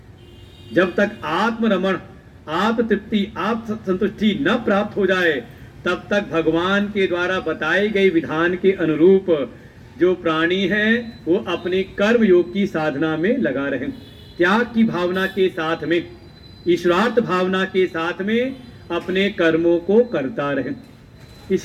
जब तक आत्मरमण, आत्म तृप्ति, आत्म संतुष्टि न प्राप्त हो जाए, तब तक भगवान के द्वारा बताए गए विधान के अनुरूप जो प्राणी है वो अपने कर्म योग की साधना में लगा रहे, त्याग की भावना के साथ में, ईश्वरार्थ भावना के साथ में अपने कर्मों को करता रहे।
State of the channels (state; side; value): identical; both; correlation 1.00